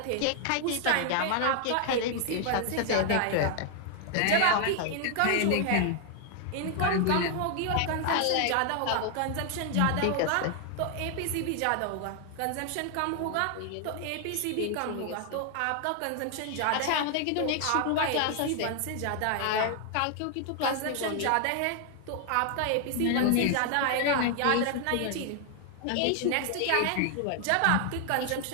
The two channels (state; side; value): different; both; correlation 0.00